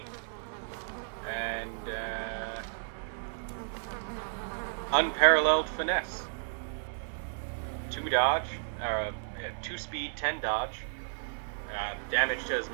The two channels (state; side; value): silent; left; 56 dB below the other